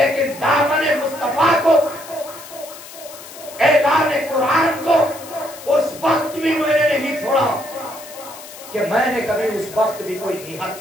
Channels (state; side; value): noise; left; hiss, 16 dB below the sound